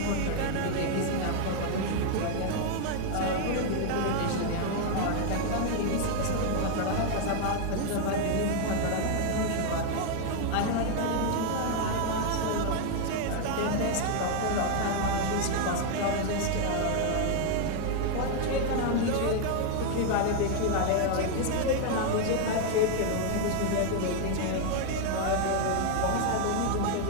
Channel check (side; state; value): both; different; correlation 0.00